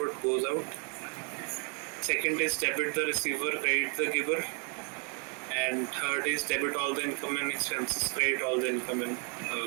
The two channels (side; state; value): left; quieter; 37.1 dB